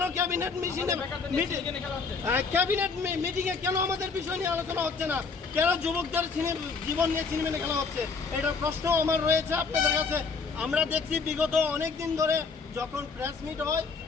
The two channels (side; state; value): right; quieter; 4.9 dB